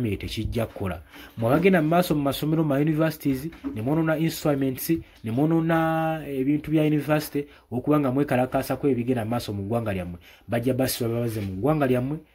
tekijja kukola. Mwabagenda mu maaso mu masomero ma universities ne mwonoona instruments ne mwonoona ebintu bya university okubanga mwekalakaasa ku ebigenda mu maaso mu ggwanga lyammwe bajja basiba babaze mu ggwanga lyammwe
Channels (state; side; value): identical; both; correlation 1.00